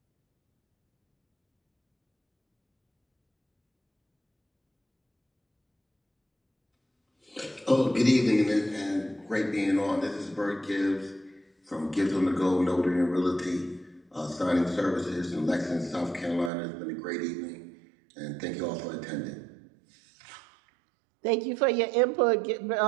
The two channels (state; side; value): drops out; left; at 16.5 s